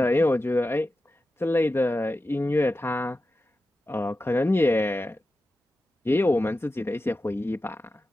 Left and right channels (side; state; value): both; normal; correlation 0.92